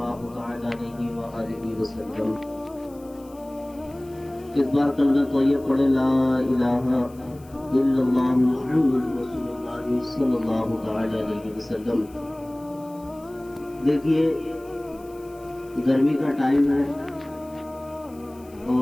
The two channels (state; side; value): noise; left; hiss, 27 dB below the sound